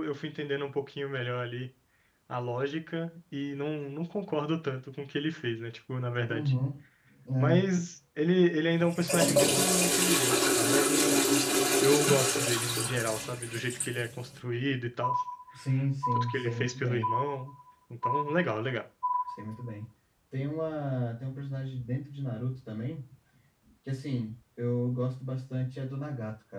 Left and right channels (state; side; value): identical; both; correlation 1.00